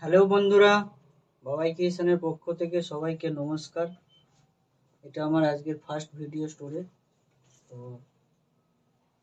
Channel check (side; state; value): both; identical; correlation 1.00